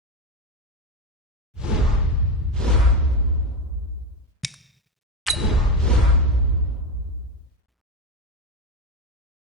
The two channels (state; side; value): normal; both; correlation 0.15